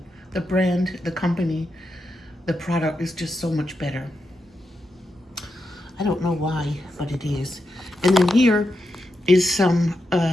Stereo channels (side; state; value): both; normal; correlation 0.86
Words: brand, the company, the product is just so much better. I don't know why, but it is. And then here is some